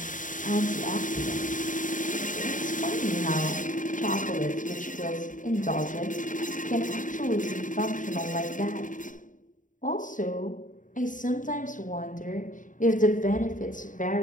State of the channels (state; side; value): late; right; 0.38 ms